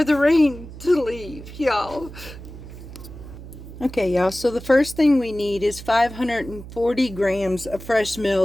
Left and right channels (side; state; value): right; noise; hum, 14 dB below the sound